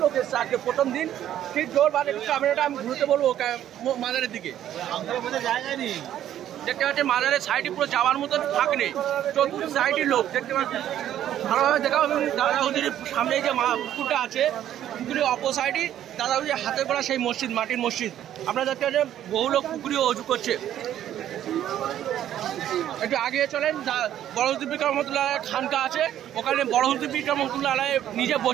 লোক এসছে আজকে প্রথম দিন। ঠিক জোর বাদে ক্যামেরাটা আমি ঘুরতে বলবো মাজারের দিকে। দেখতে পাচ্ছেন মাজারের সাইডে পুরো যাওয়ার মতন ফাঁক নেই, চতুর্থ সাইডের লোক দেখতে পাচ্ছেন। ভালোভাবে দেখা দাদা হুজুরের সামনে যে পুকুরটা আছে, পুকুরের অপর সাইডে দাদা হুজুরের হাতে করা সেই মসজিদ, মাটির মসজিদ। আপনারা দেখতে পাচ্ছেন বহু লোক পুকুরে অজু করছে। একটু আগে চলেন, বড় হুজুর পীর রহমতুল্লাহ খানকা আছে, ওখানে বড় হুজুর পীর রহমতুল্লাহ আলাইহি নিজে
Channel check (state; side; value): quieter; left; 11.4 dB